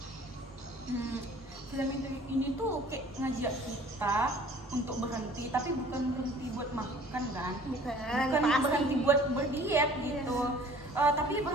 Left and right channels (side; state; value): both; normal; correlation 0.50